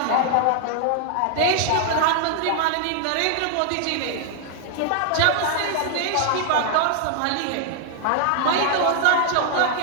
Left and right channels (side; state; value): both; different; correlation 0.00